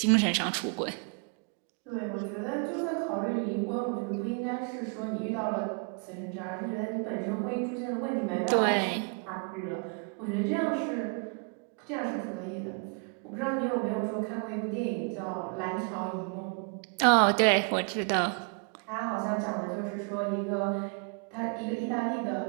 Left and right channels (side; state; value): left; quieter; 37.8 dB